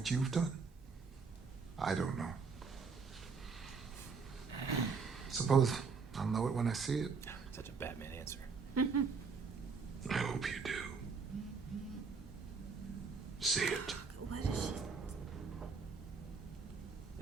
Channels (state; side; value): quieter; left; 5.1 dB